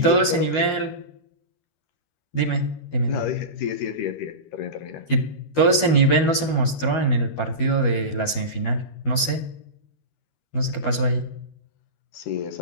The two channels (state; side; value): late; right; 12 ms